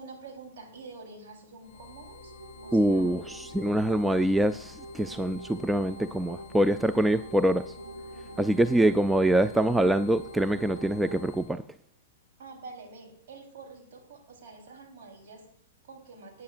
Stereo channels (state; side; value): normal; both; correlation 0.85